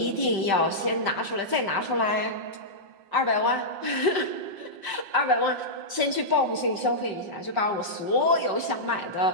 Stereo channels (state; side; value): late; left; 5.6 ms